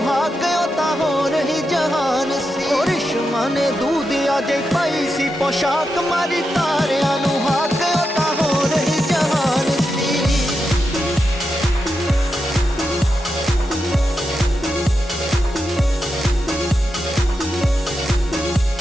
हाक ओ तां होर ही जहान सी। ਉਹ ਰਿਸ਼ਮਾ ਨੇ ਦੂਧਿਆ ਜੇ ਪਾਈ ਸੀ ਪੋਸ਼ਾਕ ਮਾਰੀ ਤਾਰਿਆਂ ਨੂੰ ਹਾਕ ਉਹ ਤਾਂ ਹੋ ਰਹੀ ਜਹਾਨ ਸੀ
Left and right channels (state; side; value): normal; both; correlation 0.87